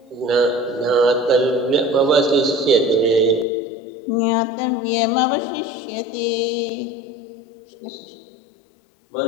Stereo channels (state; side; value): drops out; right; at 3.5 s